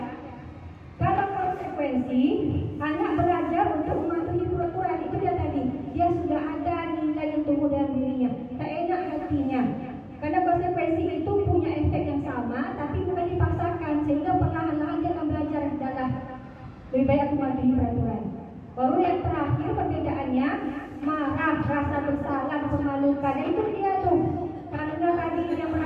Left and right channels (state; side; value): identical; both; correlation 1.00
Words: Kalau konsekuensi, anak belajar untuk mematuhi peraturan. Itu dia tadi. Dia sudah ada nilai yang tumbuh dalam dirinya. Tak enak hatinya. Karena konsekuensi itu punya efek yang sama, tapi bukan dipaksakan. Sehingga perlahan-lahan dia akan belajar adalah lebih baik aku mematuhi peraturan. Baru yang terakhir perbedaannya, marah, rasa bersalah, memalukan. Itu dia tuh. Karena tadi dia